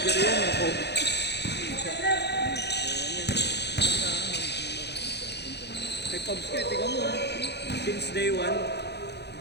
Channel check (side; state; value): right; late; 0.49 ms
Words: yan eh. Oh. Kay Pubs ka, tingnan mo. Since day 1,